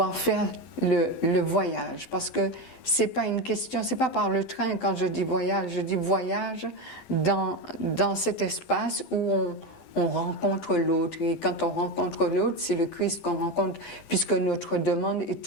faire le voyage, parce que c'est pas une question, c'est pas par le train quand je dis voyage dans cet espace où on rencontre l'autre, et quand on rencontre l'autre, c'est le Christ qu'on rencontre, puisque notre demande est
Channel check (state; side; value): late; right; 12 ms